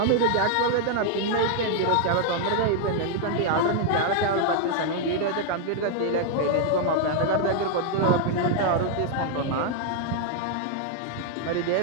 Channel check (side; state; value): both; different; correlation 0.00